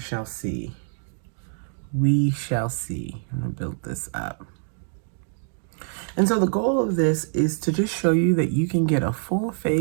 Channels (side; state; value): left; silent; digital silence